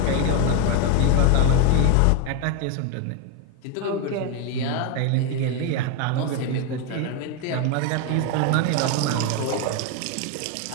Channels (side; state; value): both; different; correlation 0.02